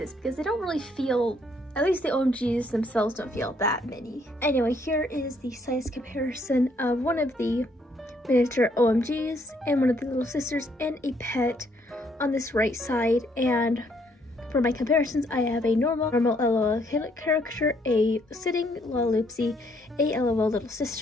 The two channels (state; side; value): normal; both; correlation 0.69